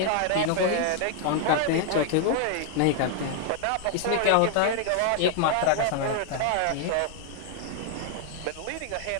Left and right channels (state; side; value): different; both; correlation 0.00